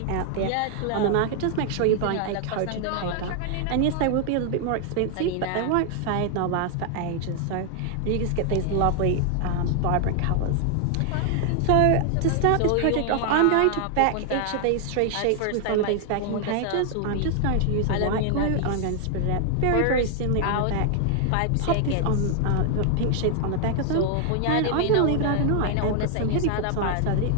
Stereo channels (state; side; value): different; both; correlation 0.00